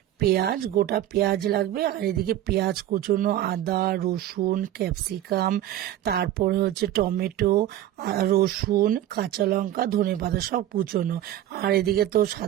পেঁয়াজ, গোটা পেঁয়াজ লাগবে, আর এদিকে পেঁয়াজ কুচোনো, আদা, রসুন, ক্যাপসিকাম, তারপরে হচ্ছে টমেটো, রসুন, কাঁচা লঙ্কা, ধনেপাতা সব কুচোনো। আর এদিকে তো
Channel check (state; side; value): quieter; left; 12.6 dB